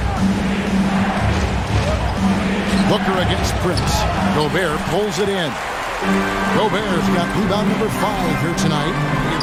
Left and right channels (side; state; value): both; identical; correlation 1.00